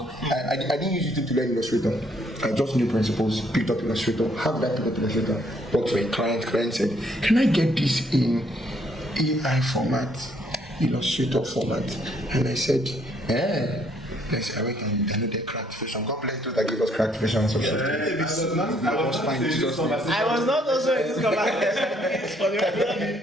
I didn't use it to learn Illustrator. I just knew principles, picked up Illustrator. How did I pick up Illustrator? Worked for a client. Client said, "Can I get this in AI format, Illustrator format?" And I said, yes, I went and downloaded Cracked Vision. God bless those that gave us Cracked Vision and subscribe. I I was not also in this conversation.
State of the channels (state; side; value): normal; both; correlation 0.67